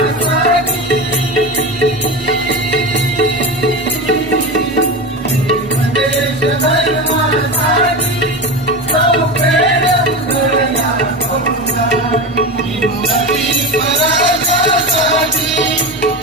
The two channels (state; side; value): normal; both; correlation 0.22